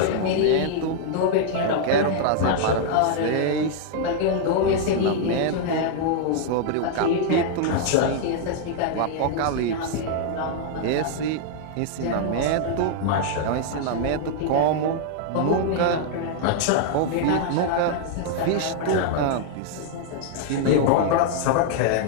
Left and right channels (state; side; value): different; both; correlation -0.01